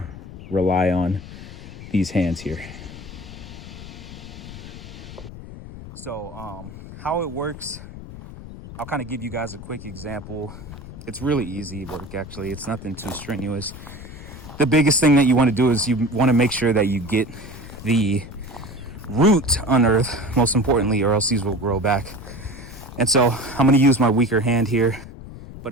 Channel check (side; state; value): left; noise; rumble, 14 dB below the sound